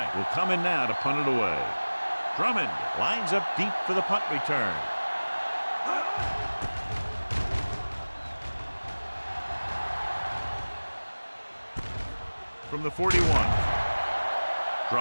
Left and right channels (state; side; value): inverted; both; correlation -1.00